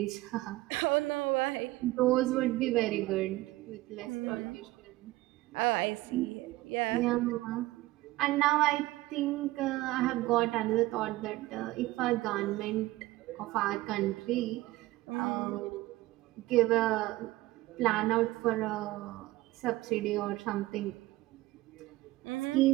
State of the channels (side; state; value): left; quieter; 18.4 dB